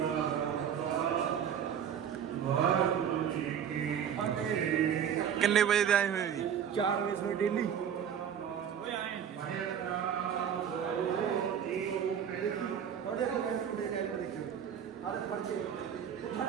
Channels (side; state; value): left; quieter; 8.6 dB